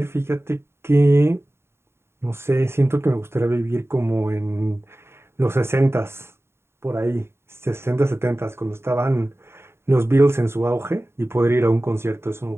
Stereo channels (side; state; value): left; late; 0.12 ms